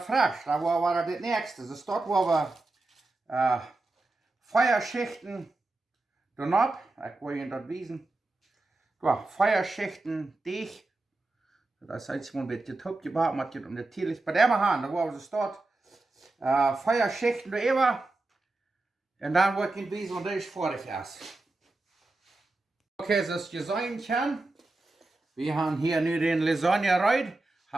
frisch, daar waren we het nächste. Dus dort waren we 4 Schichten erop. Ik wil je dat wijzen. Ja, 4 Schichten deeg. Dat is iets een beetje top gebakken, maar het natuurlijk bij de hand. Daar waren we dort 4 Schichten erover. En dan wordt het wijzen, want dat is fertig is. Oké, zoals je zien kan. We hebben hier nu den Lasagne rein.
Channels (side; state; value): left; quieter; 3.0 dB